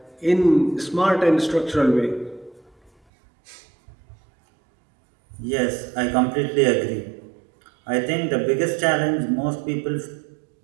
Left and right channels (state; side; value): drops out; left; at 2.9 s